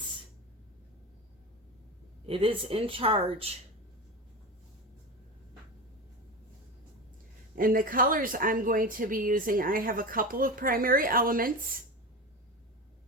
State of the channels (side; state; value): both; normal; correlation 0.23